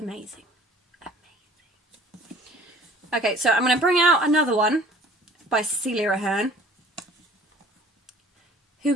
Okay, so I'm going to bring out another one by Cecilia Aherne. Who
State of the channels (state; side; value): normal; both; correlation 0.52